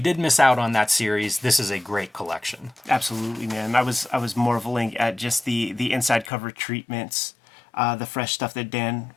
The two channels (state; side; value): drops out; right; at 6.3 s